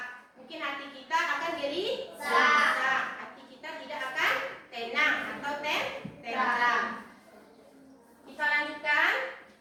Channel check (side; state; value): both; identical; correlation 1.00